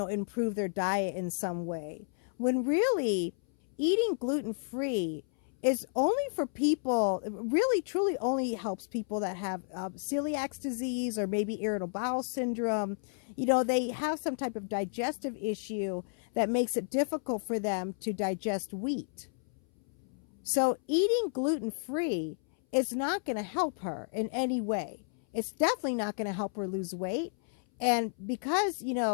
their diet in some way, when really eating gluten-free is only for people, really truly only helps people that have celiac disease, or maybe irritable bowel syndrome. They have some type of digestive issue that makes it difficult for them to digest wheat. So eating gluten-free is not going to help her in any way. It's definitely not going to help her lose weight. And because,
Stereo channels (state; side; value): silent; right; 57 dB below the other